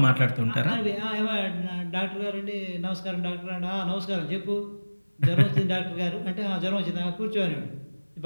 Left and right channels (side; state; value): both; inverted; correlation -1.00